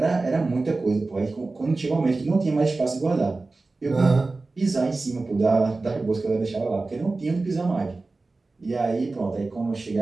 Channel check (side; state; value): left; quieter; 3.5 dB